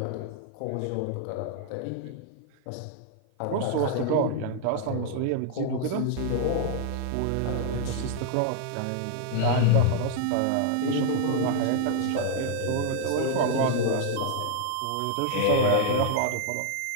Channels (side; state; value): both; different; correlation 0.00